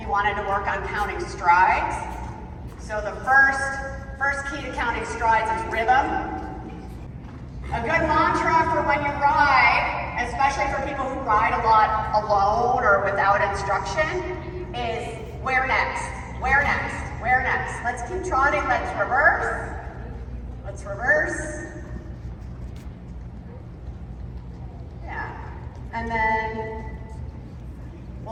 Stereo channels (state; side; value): identical; both; correlation 1.00